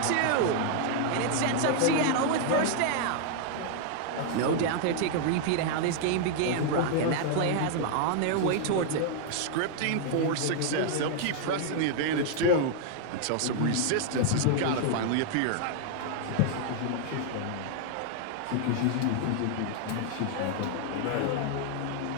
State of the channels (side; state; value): both; different; correlation 0.00